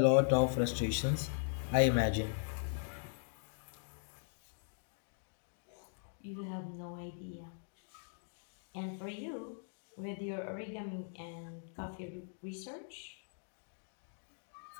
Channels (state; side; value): silent; right; digital silence